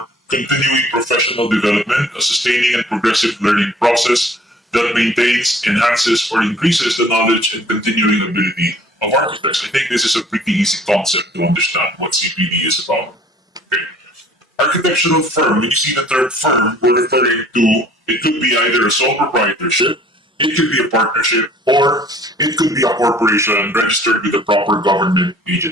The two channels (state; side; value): normal; both; correlation 0.53